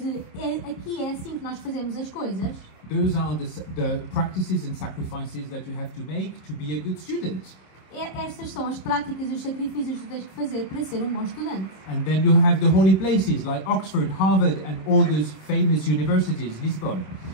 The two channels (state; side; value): late; right; 26 ms